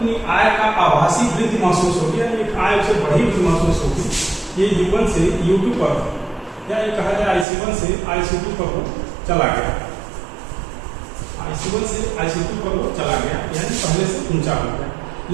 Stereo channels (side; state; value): left; drops out; at 7.5 s